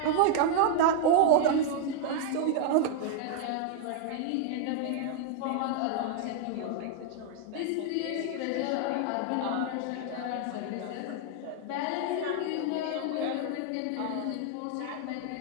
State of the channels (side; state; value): both; different; correlation 0.00